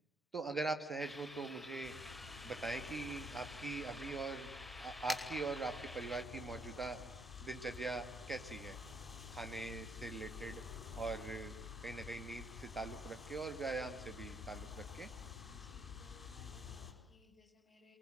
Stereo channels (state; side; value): normal; both; correlation 0.71